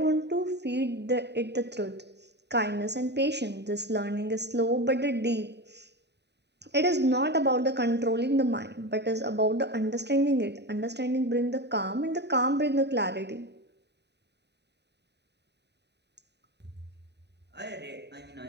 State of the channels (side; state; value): left; late; 0.50 ms